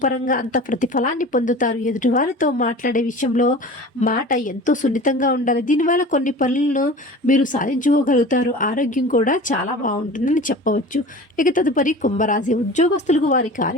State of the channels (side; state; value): both; normal; correlation 0.38